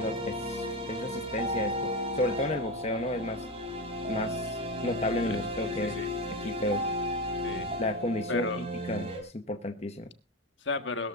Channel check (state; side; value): normal; both; correlation 0.17